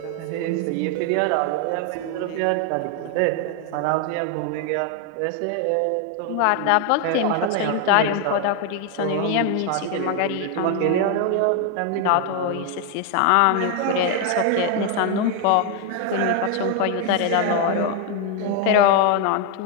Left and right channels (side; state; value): both; different; correlation 0.01